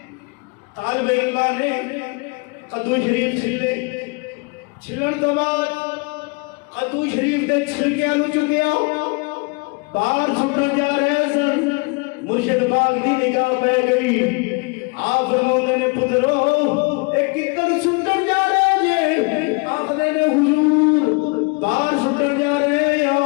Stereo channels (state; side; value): quieter; right; 30.2 dB